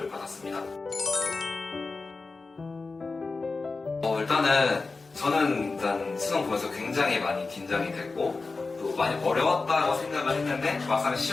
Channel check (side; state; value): right; quieter; 3.9 dB